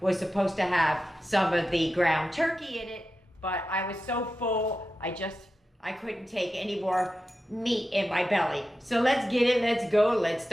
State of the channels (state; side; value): normal; both; correlation 0.92